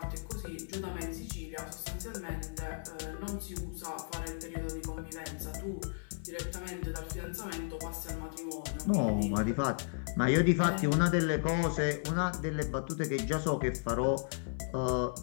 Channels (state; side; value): silent; right; 55 dB below the other